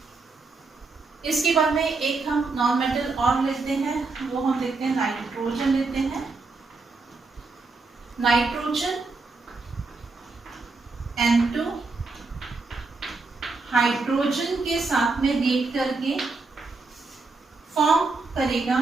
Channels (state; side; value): quieter; left; 3.9 dB